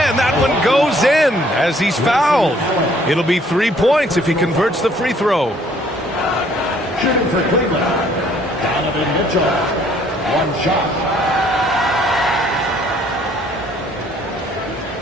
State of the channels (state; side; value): normal; both; correlation 0.61